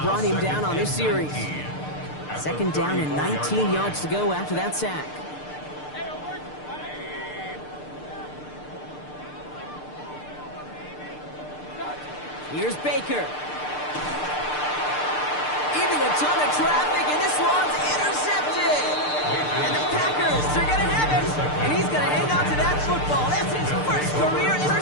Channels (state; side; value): late; right; 6.7 ms